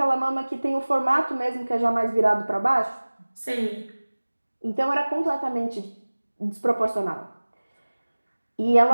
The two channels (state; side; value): inverted; both; correlation -1.00